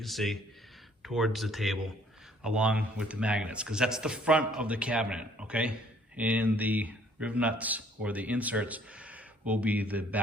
see, towards the table, along with the magnets, because that's the front of the cabinet, okay? And the rib nuts or the inserts will be the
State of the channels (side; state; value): both; normal; correlation 0.60